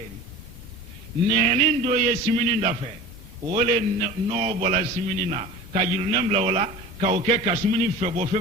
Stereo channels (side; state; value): both; normal; correlation 0.37